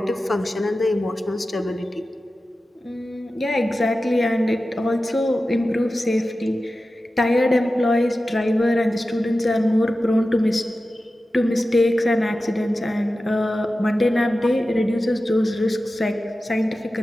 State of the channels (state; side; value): normal; both; correlation 0.94